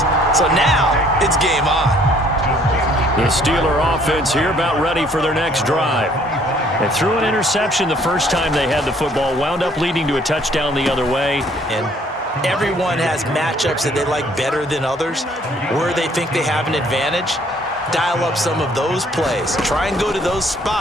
So now it's game on. The Steeler offense here about ready for their next drive. They threw an interception the first time they had the football, wound up leading to a touchdown the other way. And everyone has matchups that they like better than others, where they think they have an advantage. Dial up some of those plays. Try and go to those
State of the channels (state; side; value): normal; both; correlation 0.61